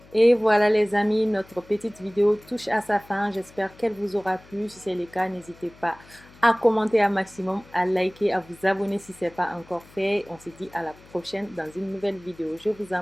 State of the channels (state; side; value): noise; left; hum, 24 dB below the sound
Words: Et voilà les amis, notre petite vidéo touche à sa fin. J'espère qu'elle vous aura plu. Si c'est le cas, n'hésitez pas à commenter un maximum, à liker, à vous abonner si ce n'est pas encore fait. On se dit à la prochaine dans une nouvelle vidéo. Je vous